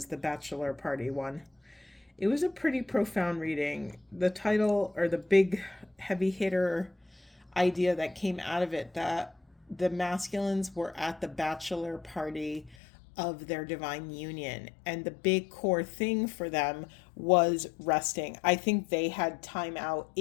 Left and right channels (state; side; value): drops out; right; at 12.8 s